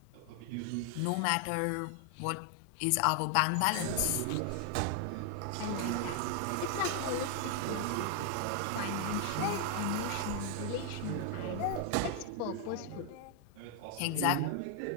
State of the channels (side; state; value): both; different; correlation 0.00